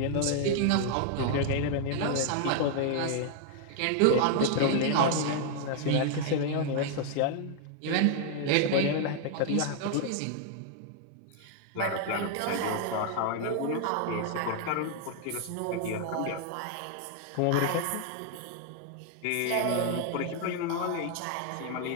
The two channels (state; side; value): different; both; correlation 0.00